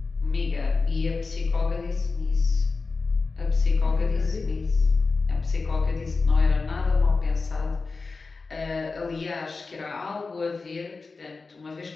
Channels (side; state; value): right; quieter; 4.1 dB